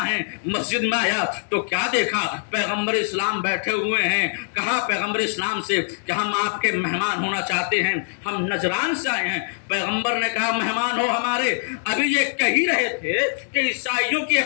ہیں. مسجد میں آیا تو کیا دیکھا, پیغمبر اسلام بیٹھے ہوئے ہیں. کہا پیغمبر اسلام سے کہ ہم آپ کے مہمان ہونا چاہتے ہیں, ہم نجران سے آئے ہیں. پیغمبر نے کہا مہمان ہو ہمارے. ابھی یہ کہہ ہی رہے تھے کہ عیسائیوں کی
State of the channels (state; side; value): silent; right; digital silence